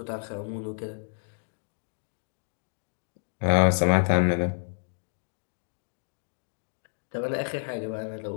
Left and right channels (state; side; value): silent; right; digital silence